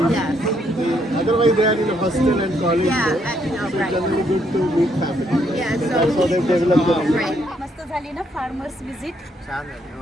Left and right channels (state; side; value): normal; both; correlation 0.73